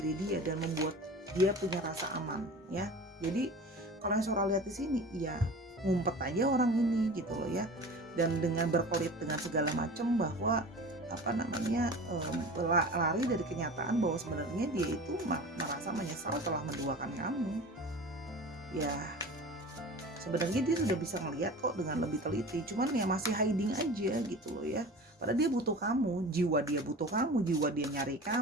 dia dan membuat dia punya rasa aman ya. Jadi kalau yang Sora lihat di sini ya ngumpet aja orang ini gitu loh ya, dan dengan berkelit dengan segala macam bahwa lari dari kenyataan bahwa sebenarnya dia itu merasa menyesal telah menduakan kamu ya. Sebenarnya dia sudah bisa ngelihat kok dengan lebih teliti, cuman ya masih hiding aja gitu loh ya. Padahal dia butuh kamu, jiwa dia butuh kamu, jiwa dia nyari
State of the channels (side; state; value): both; normal; correlation 0.37